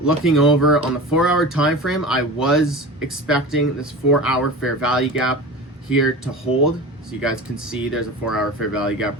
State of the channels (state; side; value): normal; both; correlation 0.32